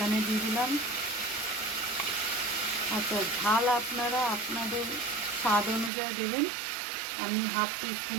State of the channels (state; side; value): drops out; left; at 5.9 s